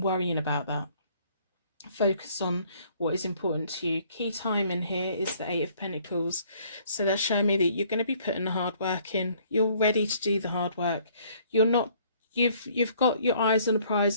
worrying about that. Focus on what is important to you. Key time in here is the Eight of Pentacles. So that's showing me that you're going to be putting the hard work in. You're ready to do the hard work. You've got your eyes on the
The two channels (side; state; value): both; inverted; correlation -0.61